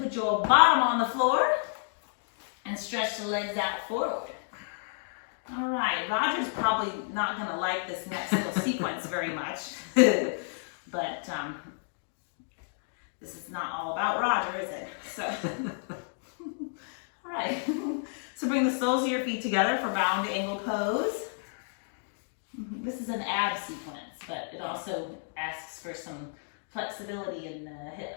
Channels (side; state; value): right; silent; digital silence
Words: your bottom on the floor. And stretch the legs out forward. All right. Roger's probably not going to like this next little sequence very much. But this is not all about Roger, is it? So, all right. So bring the soles of your feet together for bound angle pose. This is an ab sequence, but it also asks for some flexibility in the